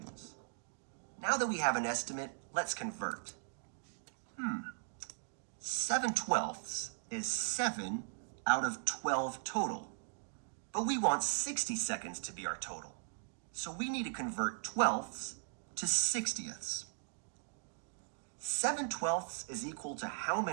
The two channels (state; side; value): silent; left; digital silence